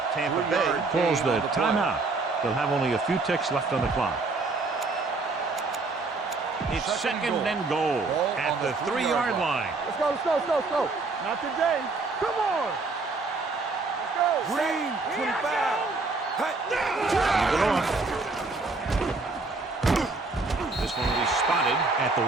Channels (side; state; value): left; quieter; 3.7 dB